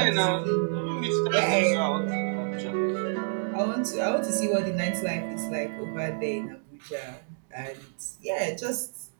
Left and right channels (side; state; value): left; silent; digital silence